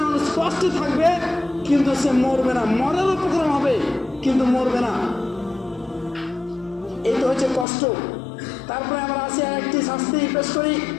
মানুষ কষ্ট থাকবে কিন্তু সে মরবে না, মরার উপক্রম হবে কিন্তু মরবে না। এই তো হচ্ছে কষ্ট। তারপরে আমরা আসি আর একটি শাস্তি পেশ করি,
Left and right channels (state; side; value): drops out; right; at 7.7 s